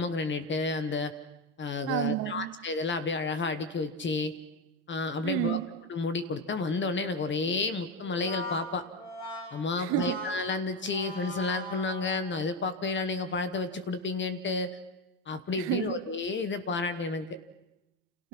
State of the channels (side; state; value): both; normal; correlation 0.13